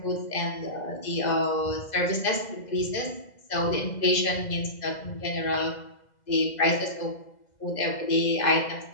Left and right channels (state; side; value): late; right; 2.0 ms